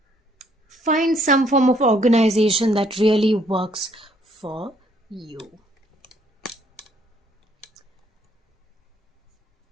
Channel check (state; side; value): normal; both; correlation 0.66